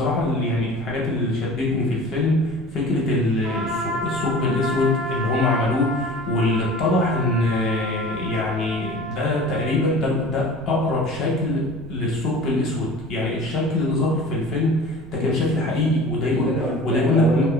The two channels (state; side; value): noise; right; rumble, 16 dB below the sound